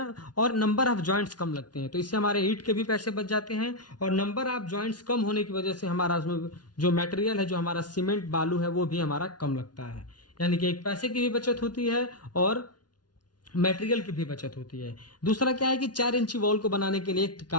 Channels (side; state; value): right; late; 0.69 ms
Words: और नंबर ऑफ जॉइंट्स कम लगते हैं। तो इससे हमारे ईंट के भी पैसे बच जाते हैं और नंबर ऑफ जॉइंट्स कम होने की वजह से हमारा उसमें जो मटेरियल है, जो हमारा सीमेंट बालू है, वो भी हमारा कम लगता है। यानी कि एक पैसे की भी बचत होती है और मटेरियल की भी बचत होती है। दूसरा क्या है कि 4 इंची वॉल को बनाने के लिए